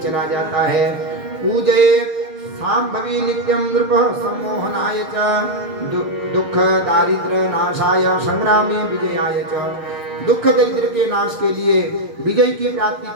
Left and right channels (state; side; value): late; left; 6.7 ms